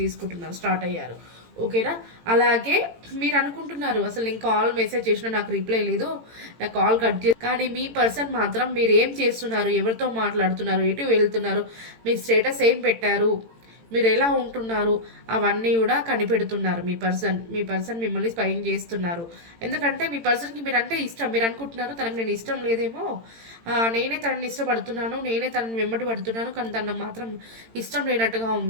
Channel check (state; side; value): late; left; 18 ms